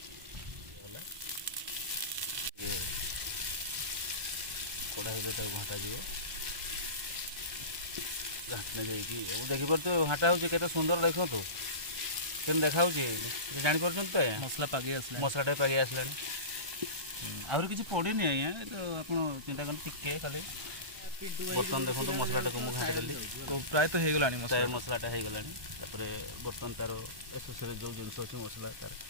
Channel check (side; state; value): left; late; 1.3 ms